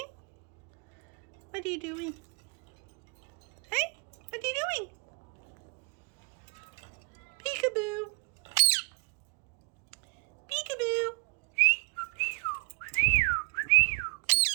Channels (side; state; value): left; quieter; 33.7 dB